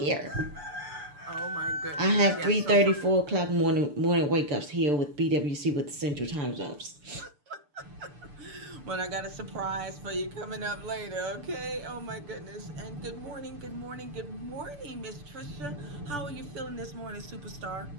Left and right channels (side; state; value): left; late; 6.8 ms